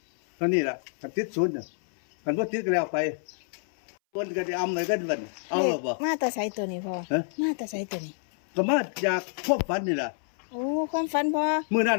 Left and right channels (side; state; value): right; silent; 60 dB below the other